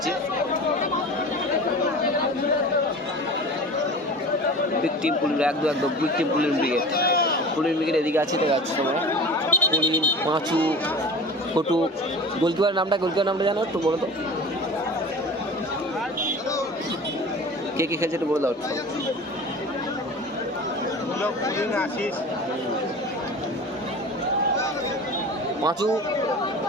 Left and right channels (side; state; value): both; normal; correlation 0.36